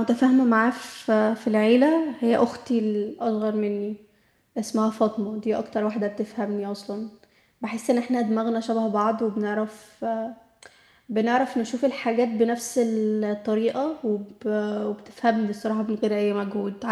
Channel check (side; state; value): both; identical; correlation 1.00